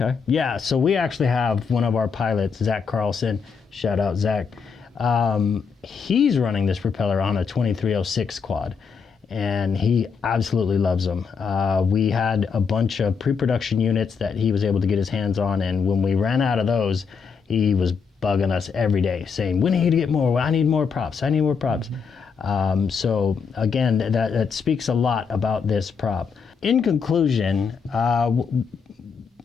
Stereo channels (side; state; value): right; quieter; 5.8 dB